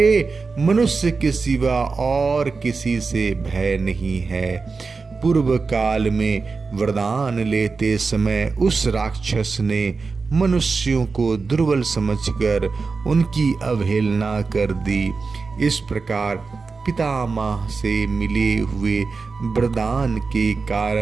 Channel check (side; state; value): left; quieter; 4.4 dB